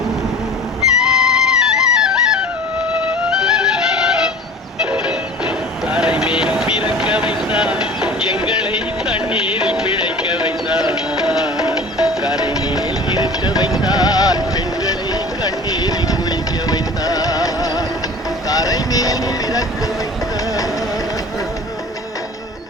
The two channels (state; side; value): normal; both; correlation 0.41